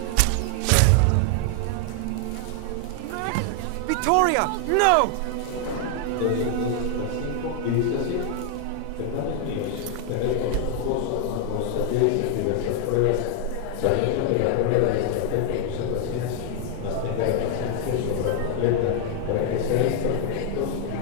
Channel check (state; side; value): different; both; correlation 0.00